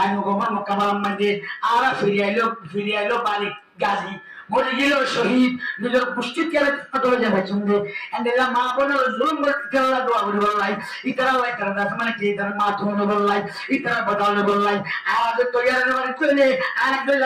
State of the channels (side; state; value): both; identical; correlation 1.00